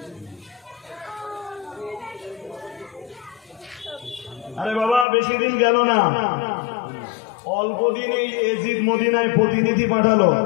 আরে বাবা বেশি দিন গেল না, অল্প দিনেই এজিদ মদিনায় প্রতিনিধি পাঠালো।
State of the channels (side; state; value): right; drops out; at 5.1 s